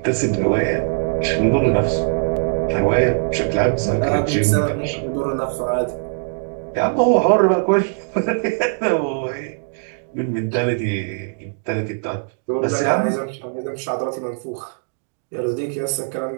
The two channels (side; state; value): left; silent; digital silence